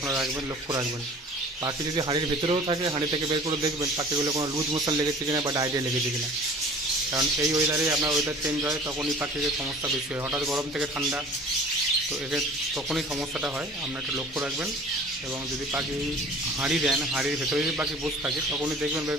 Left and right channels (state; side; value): normal; both; correlation 0.45